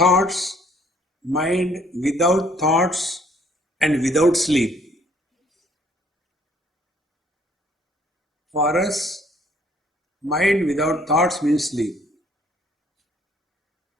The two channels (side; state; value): both; normal; correlation 0.61